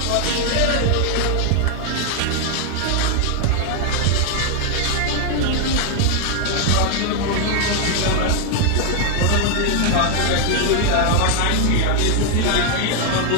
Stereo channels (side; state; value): both; different; correlation 0.00